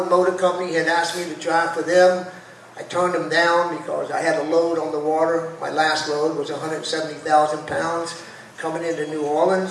Motor Company had asked me to drive for them. I turned them down because I had a load on the water. My last load was 170,000 pounds coming into New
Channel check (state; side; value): identical; both; correlation 1.00